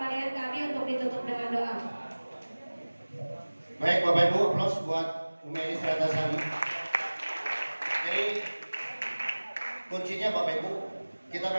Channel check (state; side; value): inverted; both; correlation -1.00